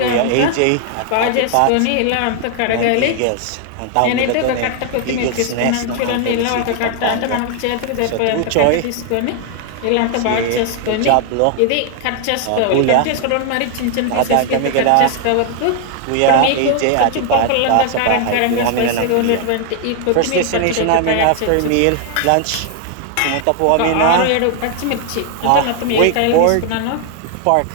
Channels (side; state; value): both; different; correlation 0.00